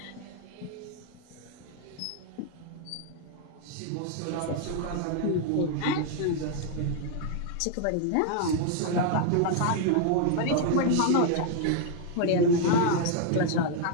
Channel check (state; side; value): different; both; correlation 0.00